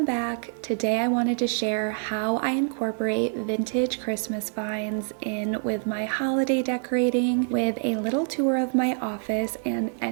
back. Today I wanted to share how I incorporate vintage Christmas finds in with my holiday decorating with a little tour of my office and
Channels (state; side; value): silent; left; 61 dB below the other